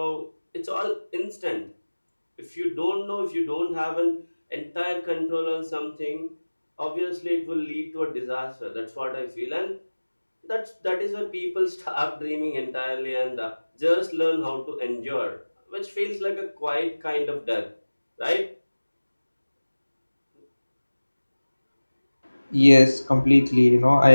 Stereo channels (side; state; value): both; inverted; correlation -1.00